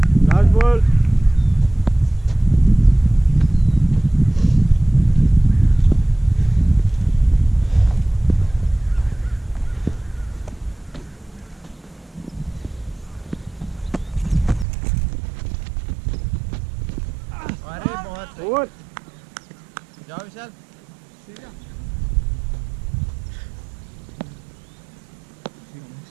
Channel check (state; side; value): drops out; left; at 14.7 s